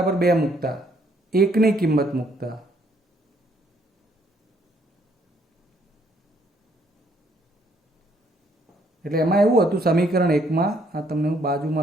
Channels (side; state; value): both; normal; correlation 0.68